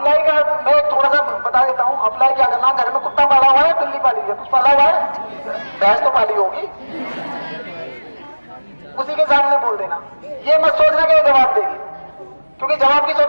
का मैं थोड़ा सा बता देता हूं। अप्लाई क्या करना? घर में कुत्ता पाला हुआ है, बिल्ली पाली है, कुछ पाला हुआ है, भैंस तो पाली होगी, उसी के सामने बोल देना। ये मत सोचना कि जवाब देगी, क्योंकि जवाब की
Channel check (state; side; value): inverted; both; correlation -1.00